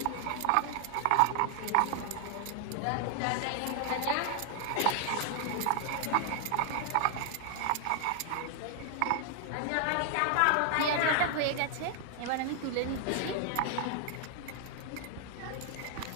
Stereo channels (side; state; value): both; different; correlation 0.00